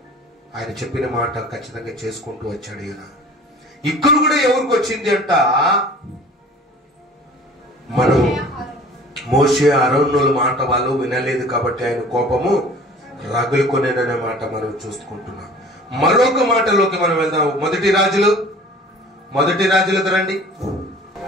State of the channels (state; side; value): normal; both; correlation 0.46